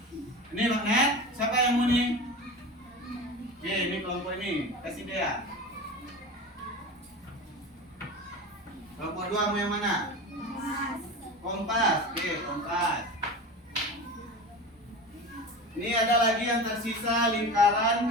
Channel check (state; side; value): normal; both; correlation 0.30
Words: Ini magnet, siapa yang mau nih? Oke, ini kelompok ini, kasih dia. Kelompok 2 mau yang mana? Kompas. Oke, kompas. Ini ada lagi yang tersisa lingkaran,